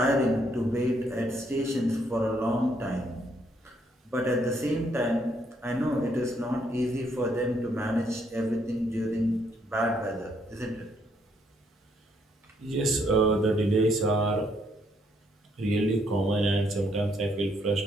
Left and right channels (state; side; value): normal; both; correlation 0.71